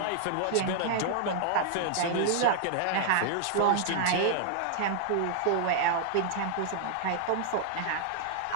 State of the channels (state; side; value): different; both; correlation -0.01